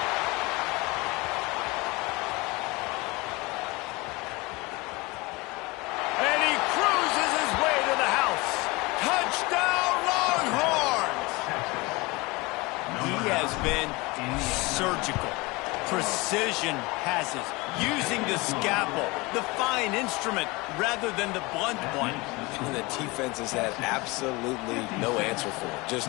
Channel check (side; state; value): right; quieter; 24.2 dB